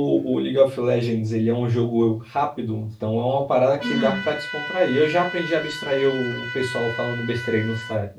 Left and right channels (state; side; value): identical; both; correlation 1.00